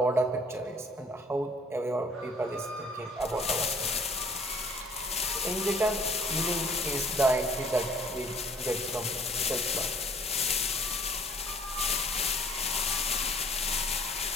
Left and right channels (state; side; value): normal; both; correlation 0.56